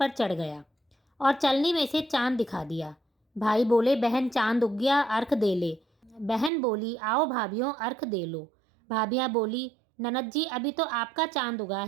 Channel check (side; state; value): left; drops out; at 6.5 s